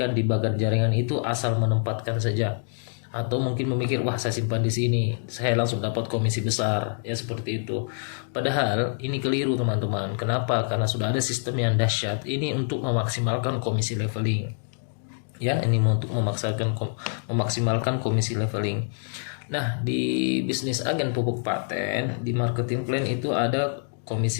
di bagan jaringan itu asal menempatkan saja, atau mungkin memikir wah saya simpan di sini saya langsung dapat komisi besar, ya seperti itu. Padahal ini keliru teman-teman. Kenapa? Karena sudah ada sistem yang dahsyat ini untuk memaksimalkan komisi leveling. Ya, ini untuk memaksimalkan komisi leveling. Nah, di bisnis agen pupuk paten, di marketing plan itu ada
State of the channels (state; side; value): silent; right; 61 dB below the other